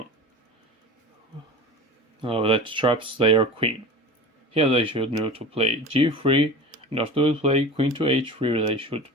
that traps their queen. Here they should know to play g3, and after they play queen to h3, they should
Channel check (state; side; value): normal; both; correlation 0.33